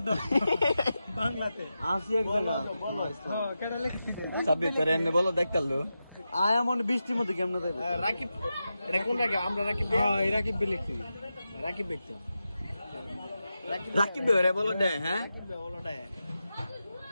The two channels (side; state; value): both; inverted; correlation -0.90